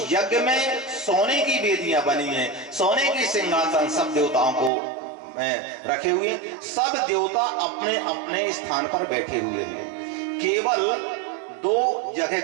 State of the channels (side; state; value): left; drops out; at 4.7 s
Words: यज्ञ में सोने की वेदियां बनी हैं, सोने के सिंहासन सब देवताओं को रखे हुए, सब देवता अपने अपने स्थान पर बैठे हुए हैं। केवल दो